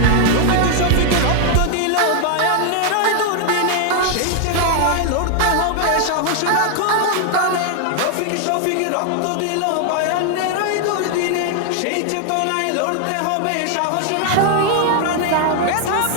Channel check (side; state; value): both; different; correlation 0.00